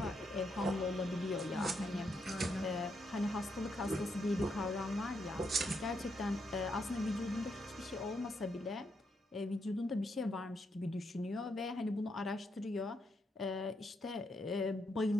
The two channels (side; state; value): both; normal; correlation 0.79